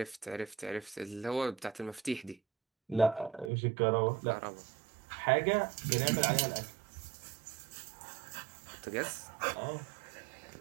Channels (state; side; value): drops out; left; at 3.5 s